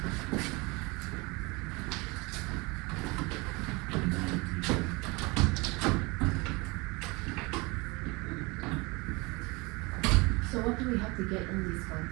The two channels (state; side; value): quieter; left; 25.9 dB